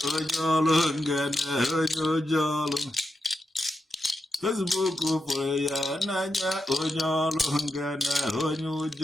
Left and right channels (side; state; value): both; normal; correlation 0.86